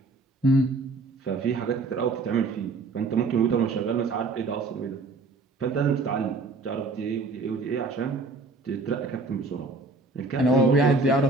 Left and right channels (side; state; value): left; quieter; 3.6 dB